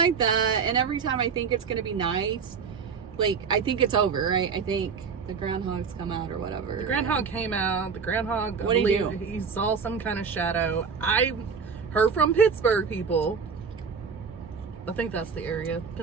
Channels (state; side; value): quieter; left; 5.8 dB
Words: that. And every time I think it's going to be nice, like, I think it's over, right? I think the groundhogs come out or whatever. The groundhog came out. The groundhog, what did he do? He saw some kind of shadow. I heard from Pittsburgh people, I think that's the area,